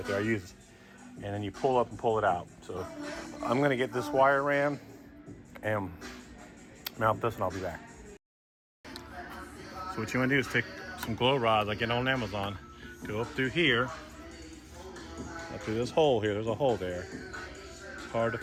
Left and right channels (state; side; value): identical; both; correlation 1.00